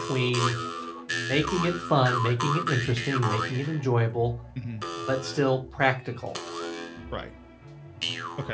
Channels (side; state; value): both; identical; correlation 1.00